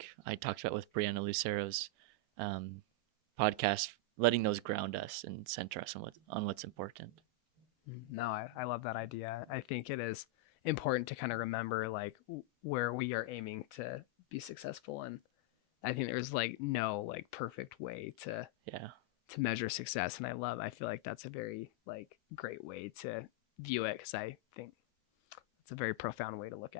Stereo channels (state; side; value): normal; both; correlation -0.01